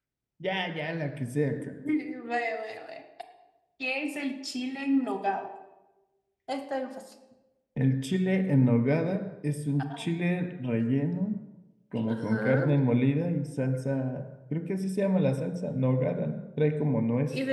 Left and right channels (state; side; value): identical; both; correlation 1.00